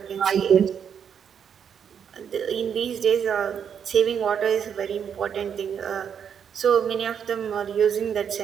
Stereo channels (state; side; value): quieter; left; 7.8 dB